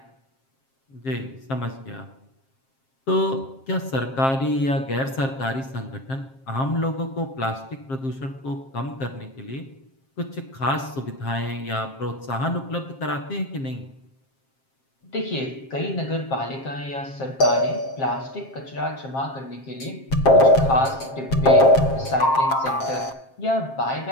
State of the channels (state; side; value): late; right; 7.5 ms